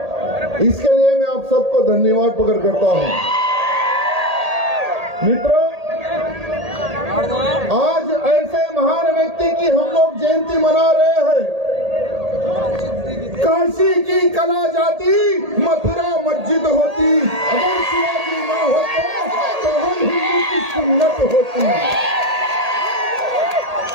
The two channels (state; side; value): late; left; 1.8 ms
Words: इसके लिए मैं आप सबको धन्यवाद प्रकट करता हूं। मित्रों, आज ऐसे महान व्यक्ति की हम लोग जयंती मना रहे हैं। काशी की कला जाती, मथुरा मस्जिद होती, अगर शिवाजी ना होते तो हम हिंदू की सुन्नत होती।